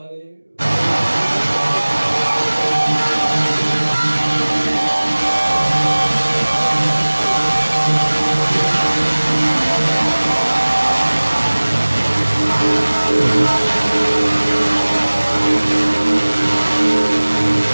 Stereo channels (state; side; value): inverted; both; correlation -1.00